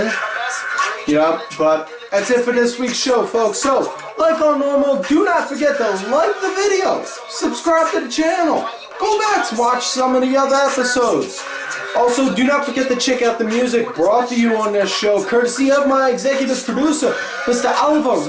Yeah, but that's it for this week's show, folks. So, like on normal, do not forget to like the video, subscribe to the channel, go back to watch some of the other episodes. Also, do not forget to check out the music brought to you on this show, courtesy of my executive producer, Mr. Oliver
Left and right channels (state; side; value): identical; both; correlation 1.00